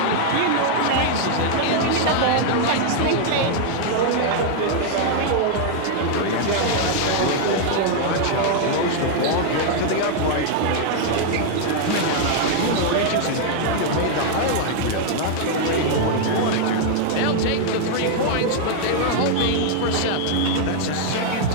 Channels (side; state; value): both; different; correlation 0.00